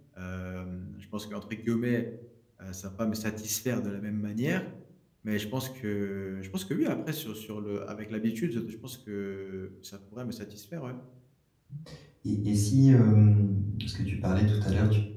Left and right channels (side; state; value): both; identical; correlation 1.00